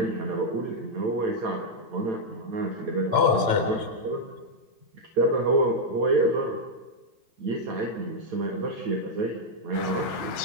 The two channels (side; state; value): left; late; 8.9 ms